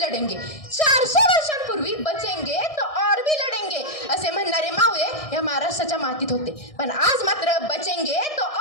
400 वर्षांपूर्वी बचेंगे तो और भी लढेंगे असे म्हणणारे मावळे या महाराष्ट्राच्या मातीत होते. पण आज मात्र बचेंगे तो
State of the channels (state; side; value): late; right; 1.6 ms